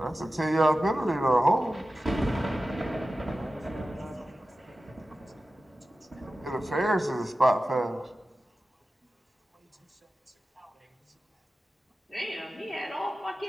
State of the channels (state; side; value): normal; both; correlation 0.94